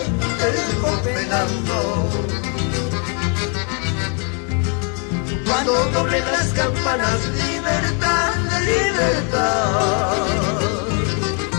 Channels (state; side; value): quieter; right; 38.5 dB